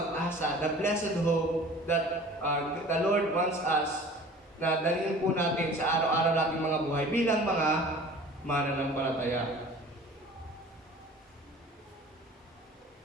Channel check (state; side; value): normal; both; correlation 0.45